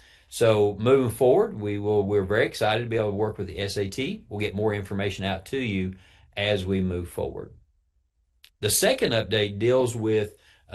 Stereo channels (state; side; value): identical; both; correlation 1.00